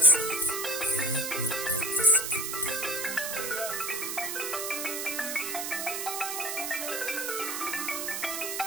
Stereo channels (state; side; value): noise; right; hiss, 3 dB below the sound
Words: Rien n'est à discuter.